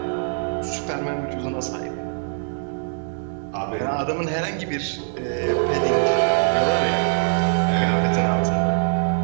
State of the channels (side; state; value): left; silent; digital silence